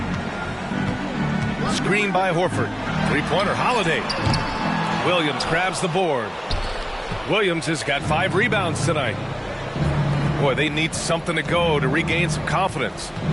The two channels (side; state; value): both; identical; correlation 1.00